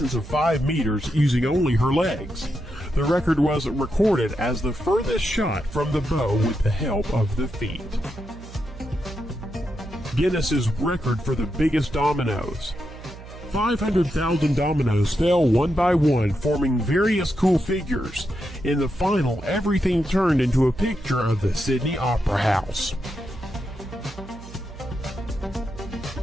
of 5 meters using only her legs. The record was recorded as the furthest shot from the bow with the help of the feet. Guinness's record for the biggest dominoes. 500,000 dominoes fell one by one, forming various cool figures. In the final, everything turned into a picture of the Sydney Opera House.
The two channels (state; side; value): noise; right; hum, 15 dB below the sound